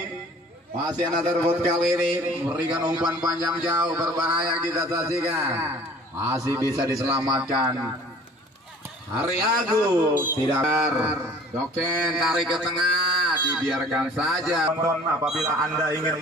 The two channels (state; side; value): normal; both; correlation 0.49